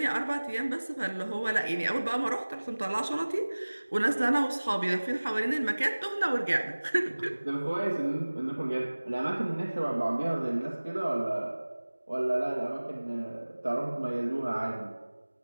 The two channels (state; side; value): inverted; both; correlation -1.00